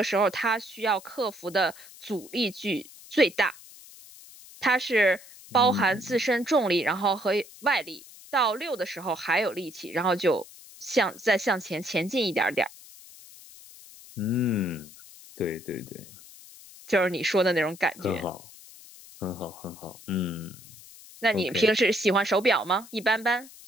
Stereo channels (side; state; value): left; noise; hiss, 20 dB below the sound